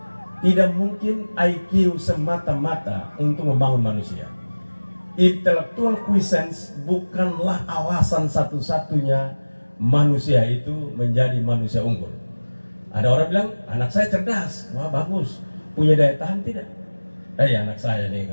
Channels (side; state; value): both; inverted; correlation -1.00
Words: tidak mungkin IQ semata-mata untuk membangun manusia. Intellectual quiescence bukanlah alasan satu-satunya manusia itu menjadi manusia unggul. Ada orang bilang, anak saya cerdas, wah bagus, punya daya tahan tidak? Anak saya nih